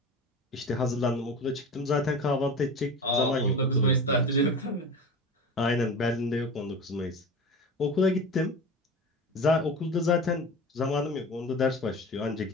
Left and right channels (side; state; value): both; normal; correlation 0.32